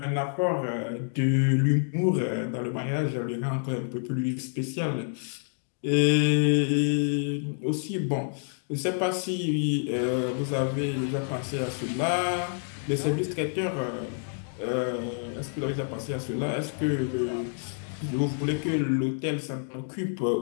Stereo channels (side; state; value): right; silent; digital silence